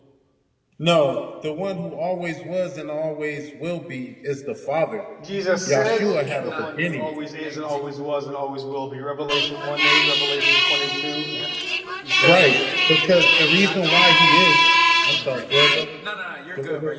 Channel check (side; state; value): both; identical; correlation 1.00